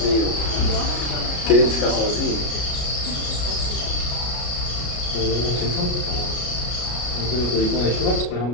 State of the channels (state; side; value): late; right; 33 ms